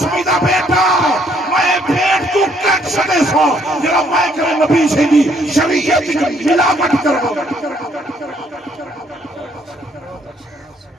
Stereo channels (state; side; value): normal; both; correlation 0.67